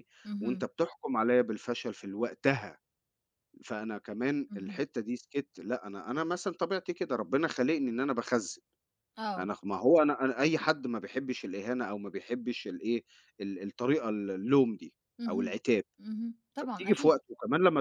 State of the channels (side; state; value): both; identical; correlation 1.00